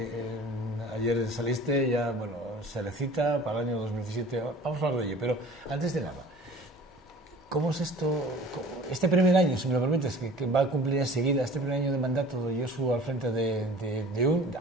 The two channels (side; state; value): both; normal; correlation 0.45